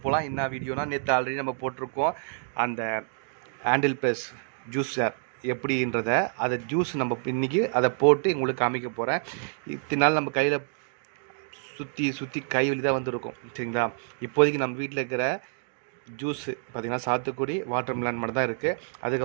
போகலாம். என்ன வீடியோனா, நேற்று ஆல்ரெடி நம்ம போட்டிருக்கோம் அந்த ஹேண்டில் ப்ளஸ் ஜூஸர் எப்படின்றத. அதை ஜூஸ் நம்ம இன்றைக்கி அதை போட்டு உங்களுக்கு காமிக்க போகிறேன். இத்தனை நாள் நம்ம கையில் சுற்றி கை வலி தான் வந்துருக்கும், சரிங்களா. இப்போதைக்கு நம்ம வீட்டில் இருக்கிற ஜூஸு பார்த்திங்கன்னா சாத்துக்குடி, வாட்டர் மெலன் மட்டும் தான் இருக்குது.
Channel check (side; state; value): left; silent; digital silence